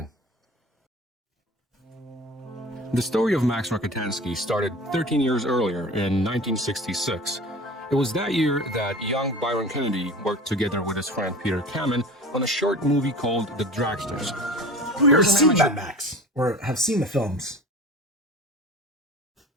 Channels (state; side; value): normal; both; correlation 0.38